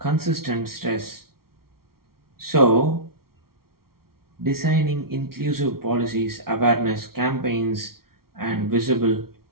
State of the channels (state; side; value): late; left; 0.94 ms